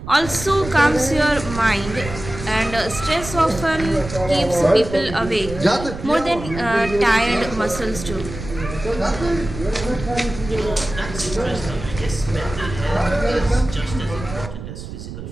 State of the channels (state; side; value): noise; right; rumble, 10 dB below the sound